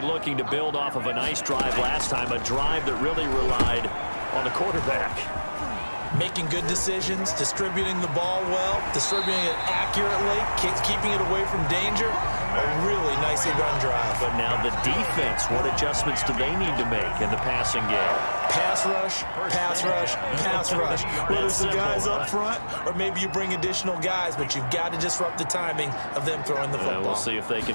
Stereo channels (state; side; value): inverted; both; correlation -1.00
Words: looking to build off of a nice drive last time, a drive that really relied on the quarterback. Making good decisions, distributing the ball well, distributing it accurately, keeping it away from danger. A really nicely run drive. But now the defense, what adjustments do they need to make in the passing game? Pass rush, pass rush, pass rush. Whether it's the guys up front or maybe you bring additional guys, but you've got to disrupt the timing of them throwing the football. We'll see if they